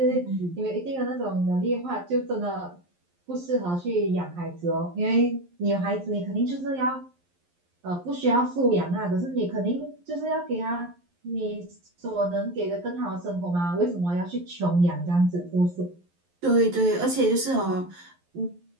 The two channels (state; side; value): late; left; 11 ms